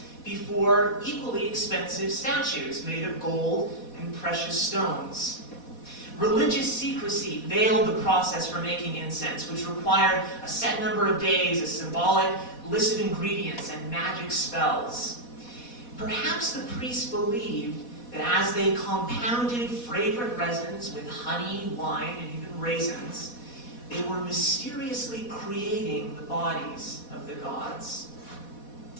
before equally expensive statues made of gold and precious stones. Religious secrecy veiled the process for making incense, which required a set number of days, a symbolic list of ingredients, and magic spells. Perhaps the priests believed that as they compounded fragrant resins with honey, wine, and even raisins, they were mysteriously creating the bodies of the gods.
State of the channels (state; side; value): late; right; 4.1 ms